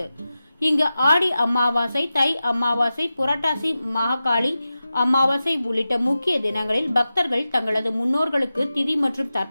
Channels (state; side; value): inverted; both; correlation -0.93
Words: இங்கு ஆடி அமாவாசை, தை அமாவாசை, புரட்டாசி மகாகாளி அமாவாசை உள்ளிட்ட முக்கிய தினங்களில் பக்தர்கள் தங்களது முன்னோர்களுக்கு திதி மற்றும்